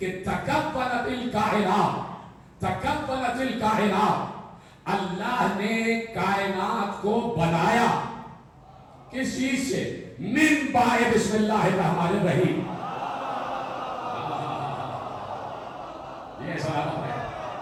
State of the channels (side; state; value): both; identical; correlation 1.00